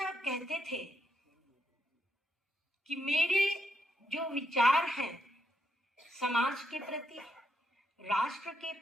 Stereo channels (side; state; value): both; normal; correlation 0.80